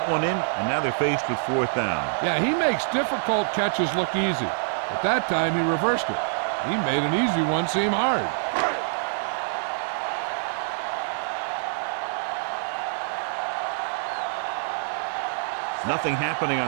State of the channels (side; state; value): left; silent; digital silence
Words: one in, and now they're faced with 4th down. Yeah, he makes difficult catches look easy. But that time he reversed it. He made an easy one seem hard. Nothing happening